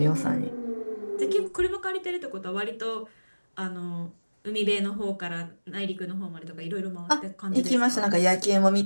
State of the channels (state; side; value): inverted; both; correlation -1.00